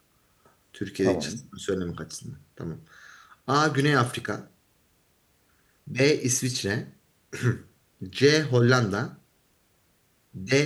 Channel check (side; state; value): both; identical; correlation 1.00